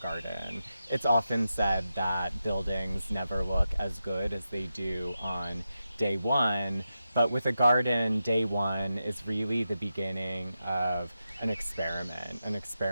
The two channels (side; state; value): both; inverted; correlation -0.90